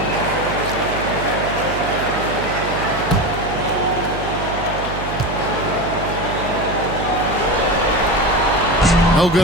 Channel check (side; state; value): right; noise; hum, 8 dB below the sound